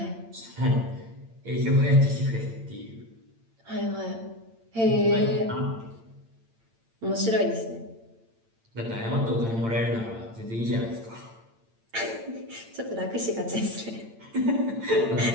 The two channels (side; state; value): left; late; 8.8 ms